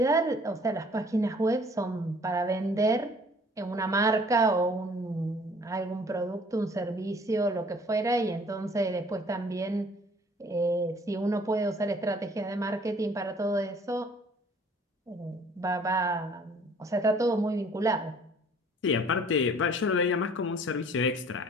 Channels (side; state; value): both; normal; correlation 0.55